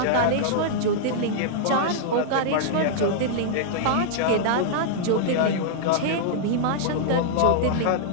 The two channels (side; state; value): both; different; correlation -0.02